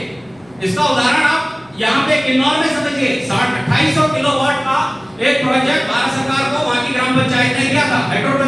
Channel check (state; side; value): noise; left; hum, 29 dB below the sound